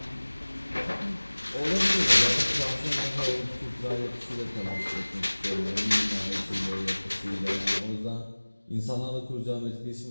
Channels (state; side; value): inverted; both; correlation -1.00